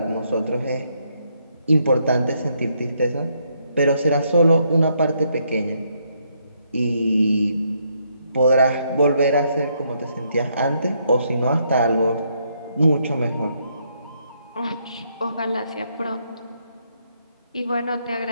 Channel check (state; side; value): inverted; both; correlation -0.74